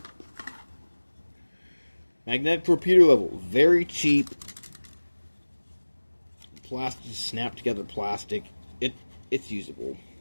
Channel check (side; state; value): both; inverted; correlation -1.00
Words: Magnetic torpedo level, very cheap. Plastic, snap together plastic. It's usable,